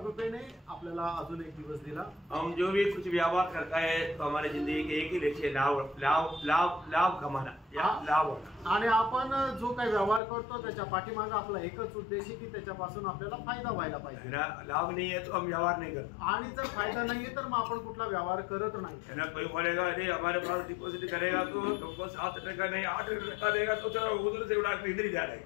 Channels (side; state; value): right; drops out; at 10.2 s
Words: आपल्याला अजून एक दिवस दिला। हम जो भी कुछ व्यवहार करता है तो हमारे जिंदगी के एक ही लक्ष्य लाभ कमाना या लाभ होना। आणि आपण जो काही व्यवहार करतो त्याच्या पाठीमागे आपला एकच उद्देश आहे की त्याच्यापासून आपल्याला फायदा व्हायला पाहिजे। लाभ नहीं है तो हम व्यवहार नहीं करते आणि जर फायदा नाहीये तर मग आपण कुठला व्यवहार करत नाही। है ना। कोई बोलेगा अरे हमारे पास डिपॉजिट करेगा तो तुमको 7% नहीं 8% देगा तो चलो उधर से उड़ा इधर ही जा रहे